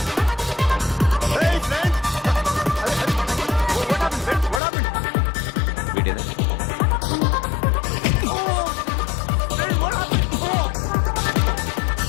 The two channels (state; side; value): drops out; right; at 4.6 s